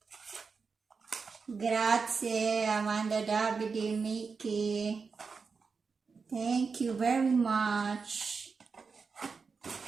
Grazie Amanda, Davide, Mickey. Thank you very much.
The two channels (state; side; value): quieter; left; 5.1 dB